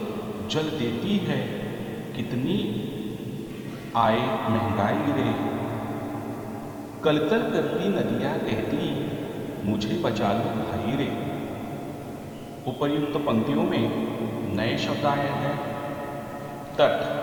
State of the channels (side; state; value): both; identical; correlation 1.00